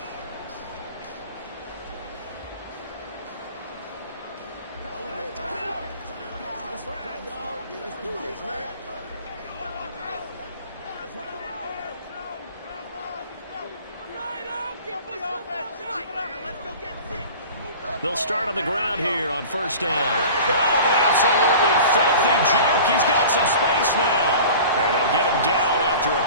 They'll start on the ground here on first down. Oh, an absolutely filthy juke. He's got some space now. And they'll get him down after a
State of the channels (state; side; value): inverted; both; correlation -0.40